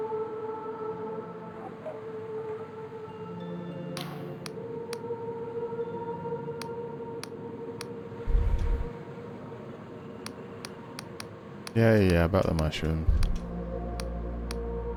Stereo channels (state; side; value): identical; both; correlation 1.00